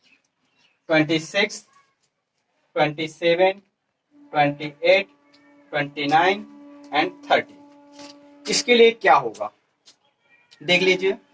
26, 27, 28, 29 एंड 30। इसके लिए क्या होगा देख लीजिए,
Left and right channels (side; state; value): both; identical; correlation 1.00